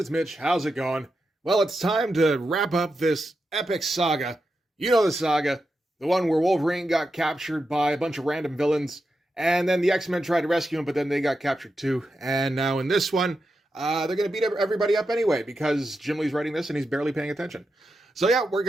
Mitch. How's it going? Well, it's time to wrap up this epic saga. You know the saga, the one where Wolverine got captured by a bunch of random villains, and then the X-Men tried to rescue him, but then they got captured too. And now in this one, they're going to beat everybody up anyway, because Jim Lee's writing this and he's barely paying attention. So yeah, we're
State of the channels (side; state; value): both; normal; correlation 0.88